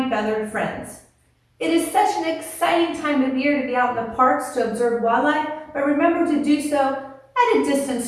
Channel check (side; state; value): both; identical; correlation 1.00